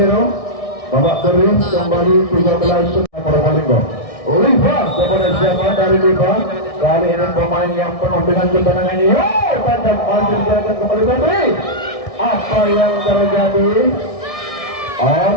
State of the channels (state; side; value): late; right; 1.6 ms